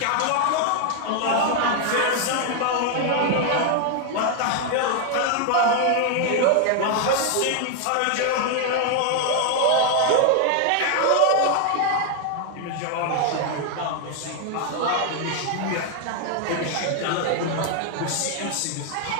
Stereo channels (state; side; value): different; both; correlation 0.00